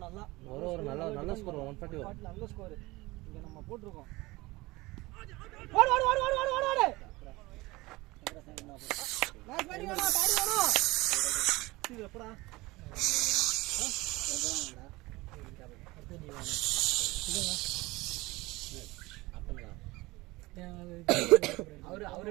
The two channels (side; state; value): left; quieter; 21.3 dB